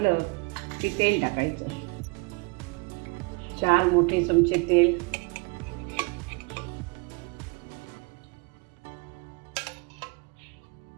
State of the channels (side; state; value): left; quieter; 29.2 dB